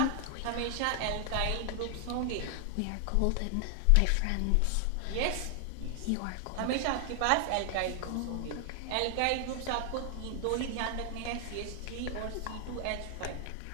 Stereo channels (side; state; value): both; different; correlation 0.00